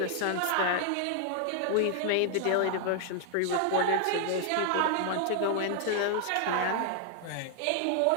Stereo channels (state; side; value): different; both; correlation 0.00